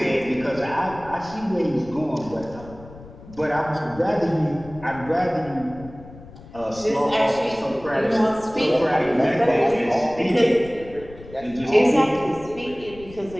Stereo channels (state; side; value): noise; left; rumble, 18 dB below the sound